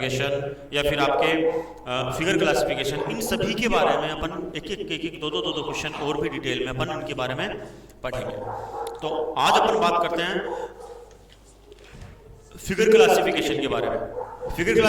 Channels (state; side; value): identical; both; correlation 1.00